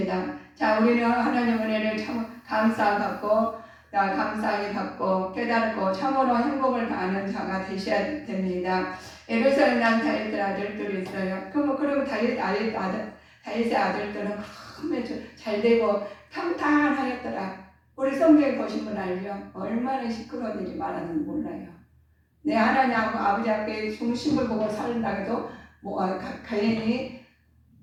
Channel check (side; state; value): both; identical; correlation 1.00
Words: 자, 우리는 하나님 은혜를 참 감사히 받고 깨닫고 참으로 행복을 아는 자가 되셔야 됩니다. 예루살렘 난 다윗의 아들들이 있어요. 그럼 다윗의 아들들은 잘 되고 평탄하였더라. 우리 성경에 보신 분 알죠? 얼마나 시끄러운 일이 많았는지 몰라요. 내 하나님 아버지 앞에 중심을 보고 살다 해도 괜히